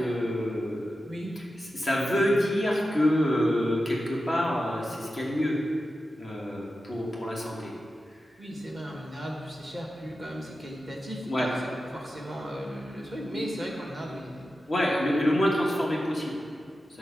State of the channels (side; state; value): both; normal; correlation 0.92